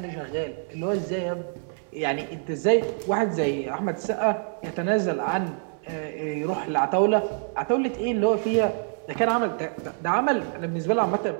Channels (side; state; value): left; silent; 61 dB below the other